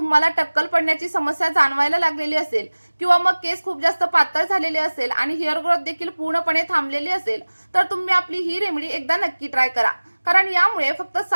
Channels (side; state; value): both; inverted; correlation -1.00